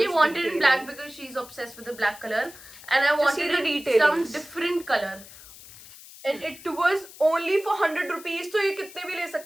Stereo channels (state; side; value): noise; left; hiss, 18 dB below the sound